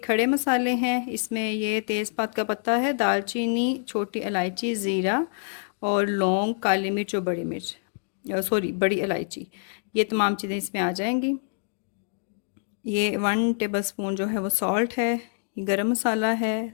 मसाले हैं। इसमें ये तेज़पात का पत्ता है, दालचीनी, छोटी इलायची, ज़ीरा और लौंग, काली मिर्च और बड़ी मिर्च, सॉरी बड़ी इलायची। ये तमाम चीज़ें इसमें आ जाएंगी। ये 1 टेबल स्पून जो है वो सॉल्ट है। ये गरम मसाला है।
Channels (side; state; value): right; silent; digital silence